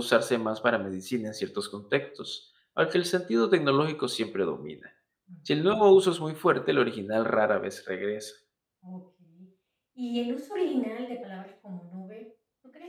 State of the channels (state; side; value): identical; both; correlation 1.00